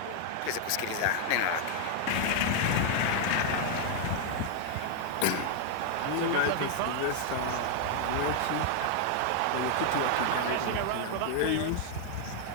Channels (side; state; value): both; different; correlation 0.00